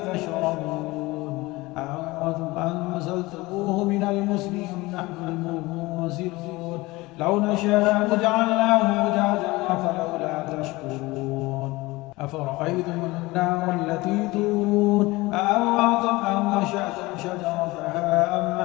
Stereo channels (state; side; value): quieter; right; 21.2 dB